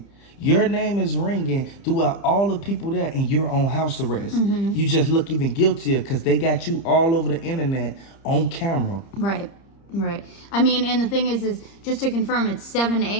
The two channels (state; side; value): late; right; 30 ms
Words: Your name is ringing throughout all the people there, and you're on house arrest. You just look even guiltier because they got you all over the internet on camera. Right. Right. I mean, and the thing is just to confirm, it's 7